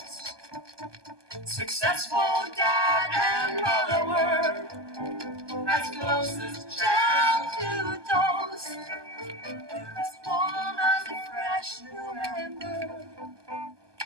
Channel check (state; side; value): late; left; 1.2 ms